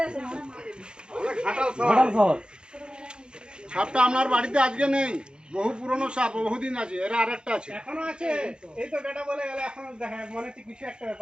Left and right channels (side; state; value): left; late; 0.050 ms